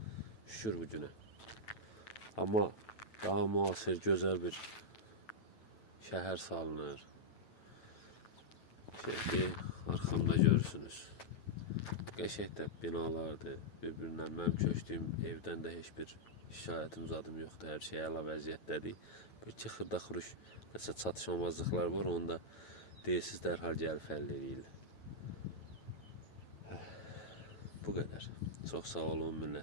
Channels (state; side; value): late; right; 9.1 ms